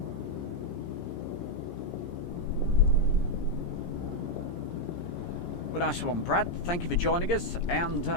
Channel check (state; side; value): late; right; 17 ms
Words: Well, nice one, Brad. Thank you for joining us. And,